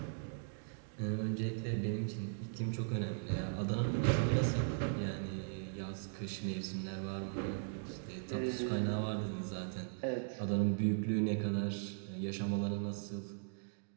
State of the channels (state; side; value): silent; left; digital silence